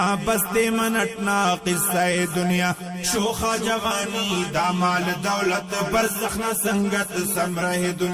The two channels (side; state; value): both; identical; correlation 1.00